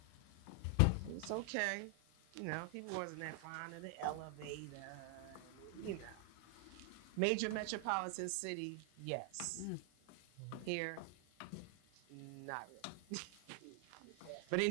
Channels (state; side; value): different; both; correlation 0.00